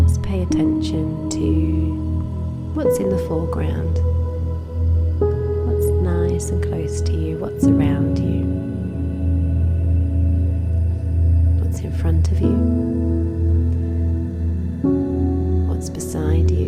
pay attention to what's in the foreground, what's nice and close to you, what's around you, what's in front of you, what's beside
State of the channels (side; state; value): both; identical; correlation 1.00